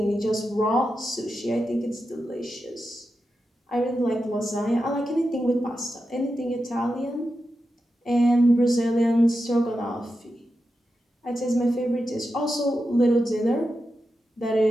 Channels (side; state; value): both; normal; correlation 0.89